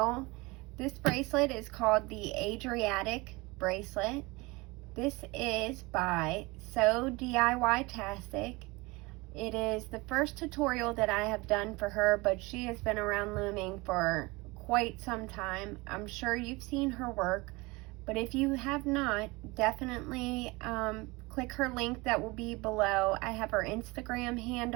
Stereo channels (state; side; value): quieter; left; 24.0 dB